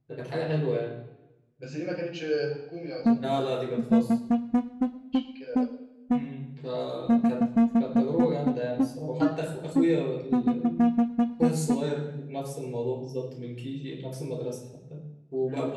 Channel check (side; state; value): both; identical; correlation 1.00